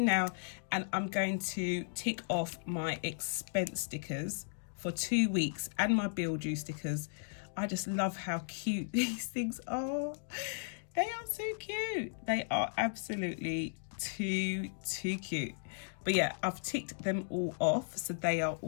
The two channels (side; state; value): right; silent; digital silence